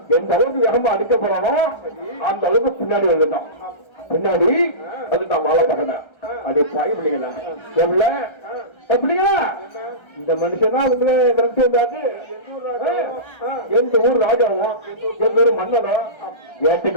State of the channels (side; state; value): right; late; 1.3 ms